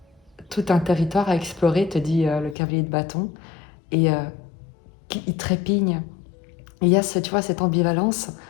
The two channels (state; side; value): drops out; right; at 2.6 s